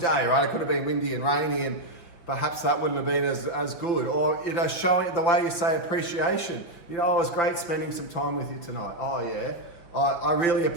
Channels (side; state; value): right; late; 5.9 ms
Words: right? It could have been windy and rainy, and perhaps that wouldn't have been as good. Or, showing the way you say appreciation. It was great spending some time with you tonight. Oh, yeah. I really